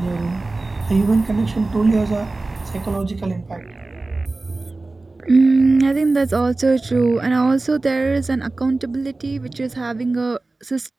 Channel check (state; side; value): quieter; left; 3.3 dB